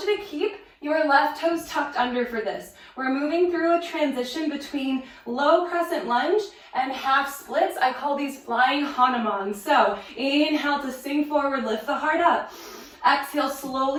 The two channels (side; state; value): both; identical; correlation 1.00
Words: to keep your left toes tucked under for this. We're moving through a transition between low crescent lunge and half splits. I call these flying hanuman. So inhale to sink forward, lift the heart up. Exhale,